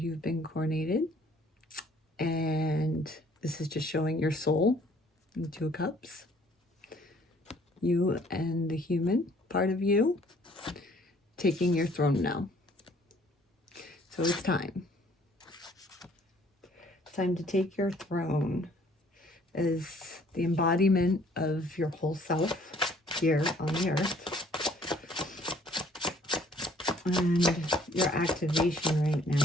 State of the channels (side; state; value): both; normal; correlation 0.59